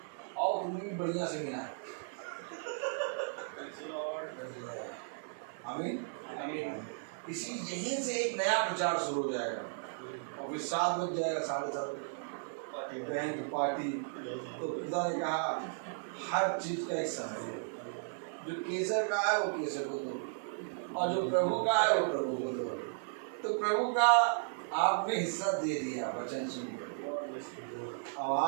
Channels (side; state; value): left; silent; digital silence